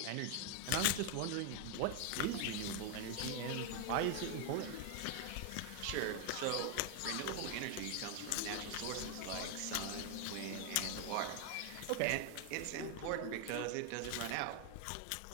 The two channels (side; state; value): both; different; correlation 0.01